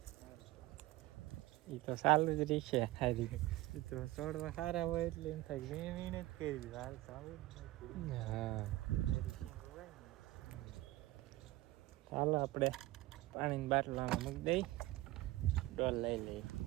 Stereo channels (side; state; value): left; quieter; 18.0 dB